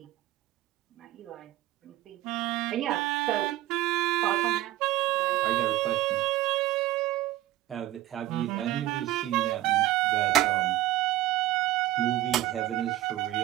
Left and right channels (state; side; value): quieter; left; 15.3 dB